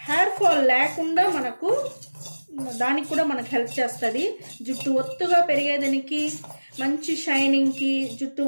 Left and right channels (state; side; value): inverted; both; correlation -1.00